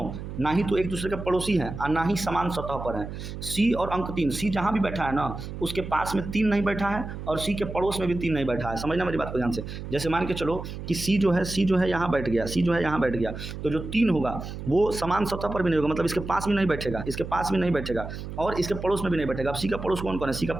ना ही तो एक दूसरे के पड़ोसी हैं और ना ही समान सतह पर हैं। सी और अंक 3, सी जहाँ भी बैठा है ना, उसके पास में 3 नहीं बैठा है और सी के पड़ोस में भी 3 नहीं बैठा है। समझना मेरी बात को ध्यान से। जैसे मान के चलो कि सी जो है यहाँ बैठ गया, सी जो है यहाँ बैठ गया, तो जो 3 होगा वो समान सतह पर भी नहीं होगा, मतलब इसके पास भी नहीं बैठेगा, इसके पास भी नहीं बैठेगा और इसके पड़ोस में भी नहीं बैठेगा। अब सी का पड़ोस कौन कौन है? सी का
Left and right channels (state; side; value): noise; right; hum, 8 dB below the sound